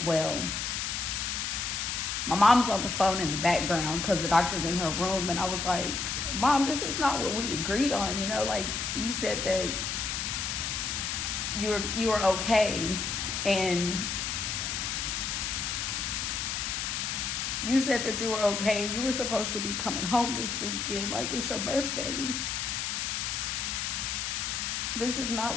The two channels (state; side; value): noise; left; hiss, 1 dB below the sound